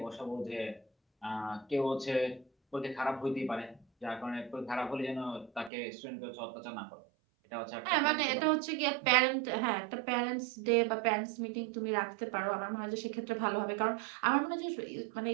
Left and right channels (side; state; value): left; drops out; at 5.7 s